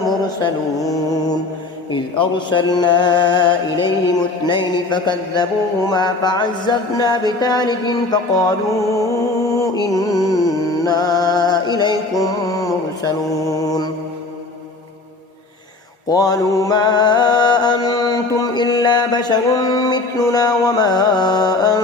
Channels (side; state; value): right; quieter; 3.3 dB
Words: إذ أرسلنا إليهم 2 فكذبوهما فعززنا بثالث فقالوا إنا إليكم مرسلون قالوا ما أنتم إلا بشر مثلنا وما